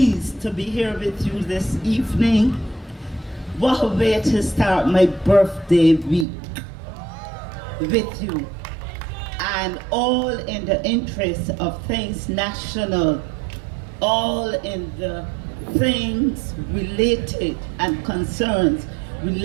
to be here with you this evening. What a way to start my birthday week with you. And all in the interest of things national, all in the things related and concerns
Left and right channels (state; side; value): drops out; left; at 6.2 s